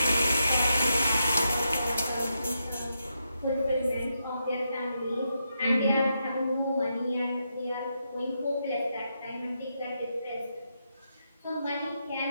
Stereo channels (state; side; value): inverted; both; correlation -0.83